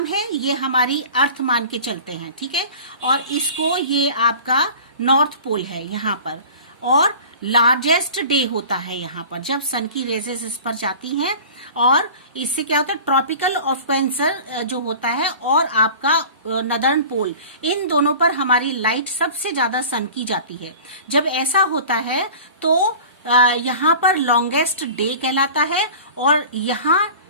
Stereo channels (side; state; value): both; inverted; correlation -0.40